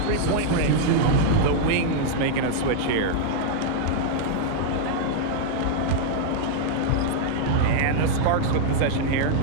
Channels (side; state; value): both; different; correlation -0.01